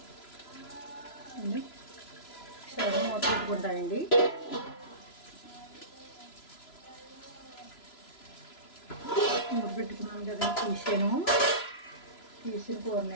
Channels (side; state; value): right; late; 3.0 ms